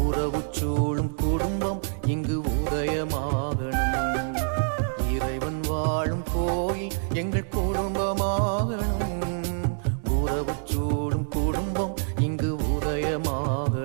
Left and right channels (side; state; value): left; silent; 61 dB below the other